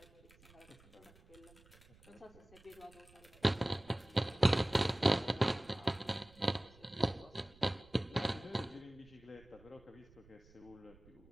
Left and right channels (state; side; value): noise; right; rumble, 26 dB below the sound